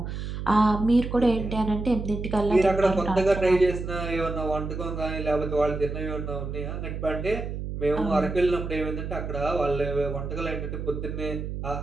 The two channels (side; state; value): right; noise; hum, 6 dB below the sound